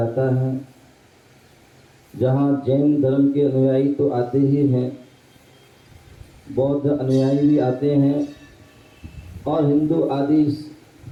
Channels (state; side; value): identical; both; correlation 1.00